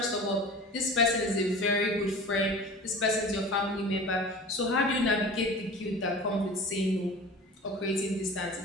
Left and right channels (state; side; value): normal; both; correlation 0.38